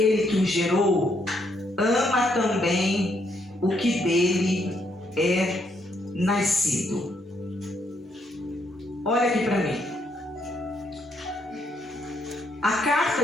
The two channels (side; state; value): both; normal; correlation 0.74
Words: que o gerou, ama também o que dele é nascido. Olha aqui para mim. A